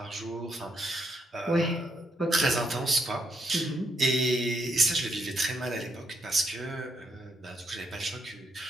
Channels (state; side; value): normal; both; correlation 0.77